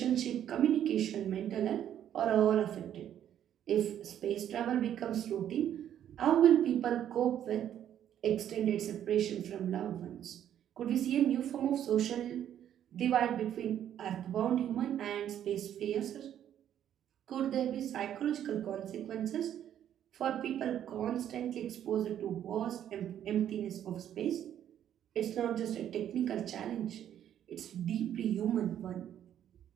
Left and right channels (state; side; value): quieter; left; 10.4 dB